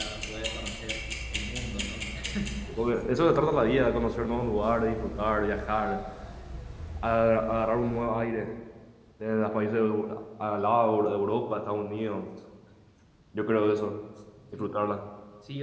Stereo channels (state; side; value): identical; both; correlation 1.00